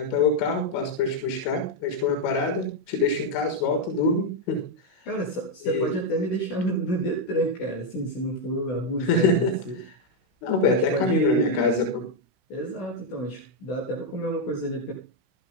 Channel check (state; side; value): late; right; 16 ms